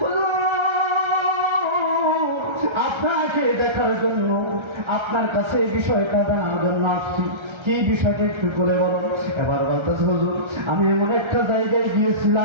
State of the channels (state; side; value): late; left; 1.3 ms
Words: আপনাকে দেখার জন্য, আপনার কাছে বিষয়টা জানার জন্য আসছি। কি বিষয়টা একটু বলে বলো। এবার বলতেছে, হুজুর, আমি এমন একটা জায়গায়